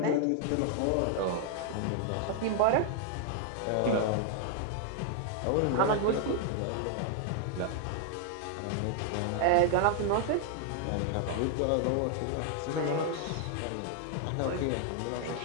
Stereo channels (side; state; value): both; different; correlation 0.00